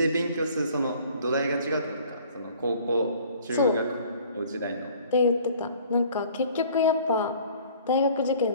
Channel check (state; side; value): inverted; both; correlation -0.53